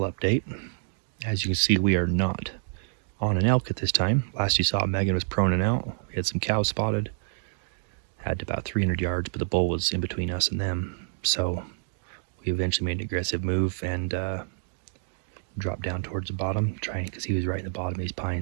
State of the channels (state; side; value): silent; left; digital silence